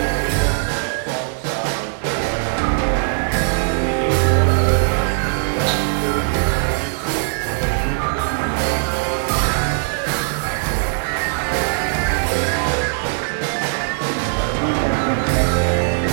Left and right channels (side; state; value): left; silent; digital silence